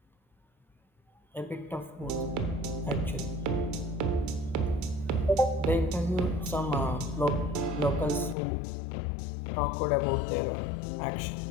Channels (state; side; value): drops out; right; at 8.3 s